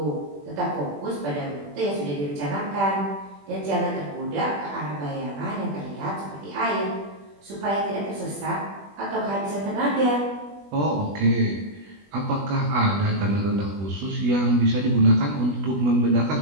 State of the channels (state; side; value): late; left; 20 ms